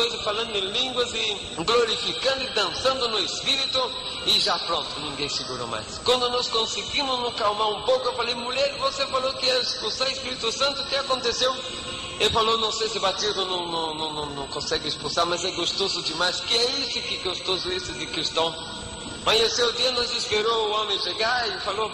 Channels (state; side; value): identical; both; correlation 1.00